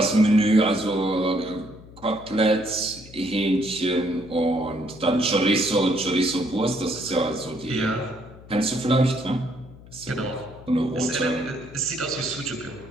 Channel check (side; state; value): left; noise; hum, 19 dB below the sound